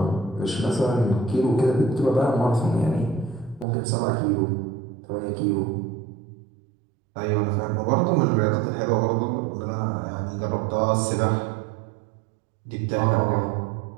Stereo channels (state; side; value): drops out; left; at 3.7 s